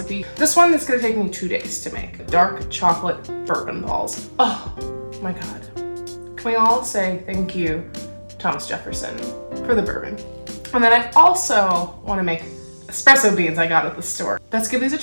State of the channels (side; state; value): both; inverted; correlation -1.00